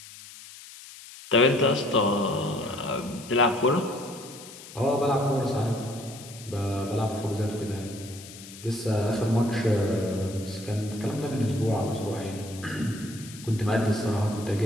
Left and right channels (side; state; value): left; noise; hiss, 16 dB below the sound